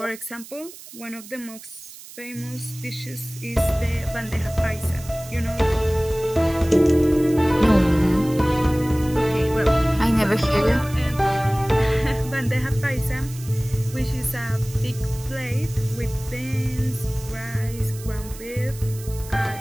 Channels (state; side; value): noise; right; hiss, 17 dB below the sound